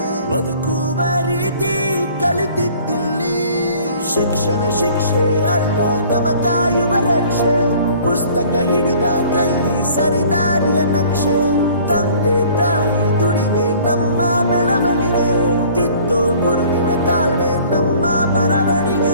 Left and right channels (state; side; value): inverted; both; correlation -0.52